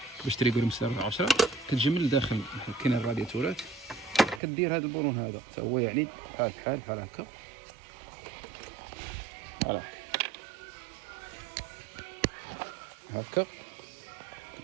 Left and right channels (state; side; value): drops out; left; at 4.4 s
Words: باش تريقلهم مسارة 10 كتجي من الداخل. كاين الرادياتورات كدير هذا البرون هذا حتى هو، يعني بحال هكا. فوالا هكا